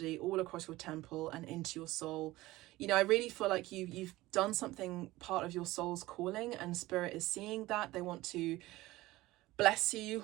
all across your temple and into your soul. You know, I really feel like you've done something, part of your soul's calling, and spirit is seeing that. They want to bless you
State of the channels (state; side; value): quieter; left; 18.2 dB